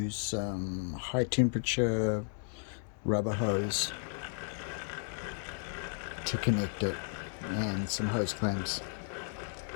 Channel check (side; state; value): right; silent; 55 dB below the other